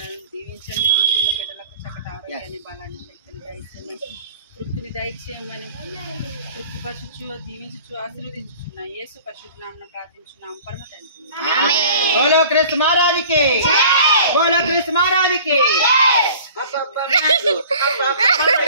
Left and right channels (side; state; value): both; inverted; correlation -0.46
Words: దీవించండి. పుట్టిన బిడ్డలకు చక్కటి ఆరోగ్యాన్ని, బలాన్ని, శక్తిని దయచేయమని, తృప్తిని దయచేయమని, తృప్తిపరచుచు దీవించుచు ఆశీర్వదించుచున్న యేసు పరిశుద్ధ నామమున ప్రార్థించున్నాం పరమ తండ్రి. బోలో కృష్ణ మహారాజుకి, బోలో కృష్ణ మహారాజుకి.